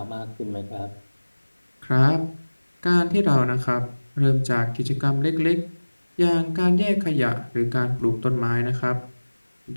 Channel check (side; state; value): both; inverted; correlation -1.00